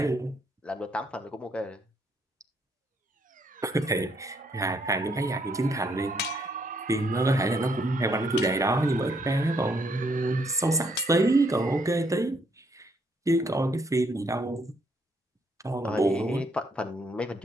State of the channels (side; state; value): both; normal; correlation 0.71